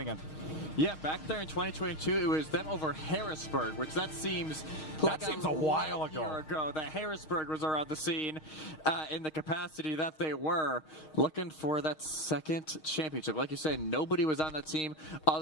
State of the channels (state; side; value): late; right; 6.4 ms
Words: end. Yeah, back there in 2022, it was them over Harrisburg, which that seems like a while ago. Year ago that Harrisburg was around the scene in the capacity that they were, looking for that second championship. Like you said, nobody was on that team